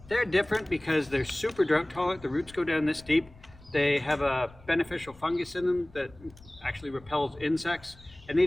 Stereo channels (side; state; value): left; noise; rumble, 23 dB below the sound